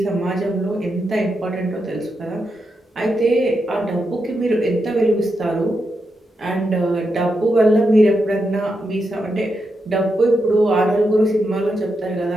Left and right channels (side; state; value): both; normal; correlation 0.85